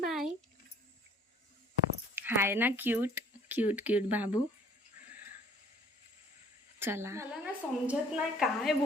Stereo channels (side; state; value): both; normal; correlation 0.56